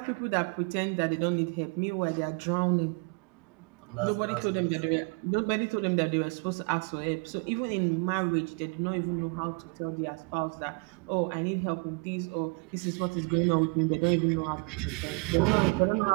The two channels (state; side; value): quieter; left; 33.4 dB